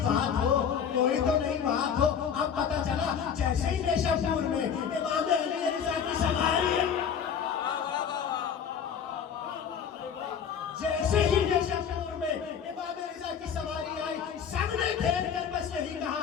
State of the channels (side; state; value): right; quieter; 7.5 dB